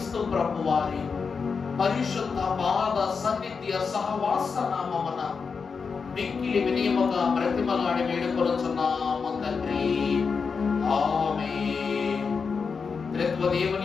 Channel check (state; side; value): quieter; right; 5.4 dB